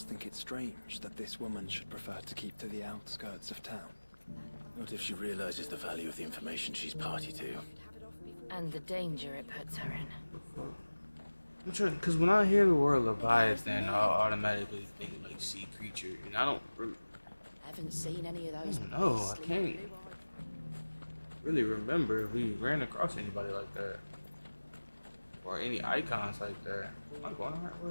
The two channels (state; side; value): inverted; both; correlation -1.00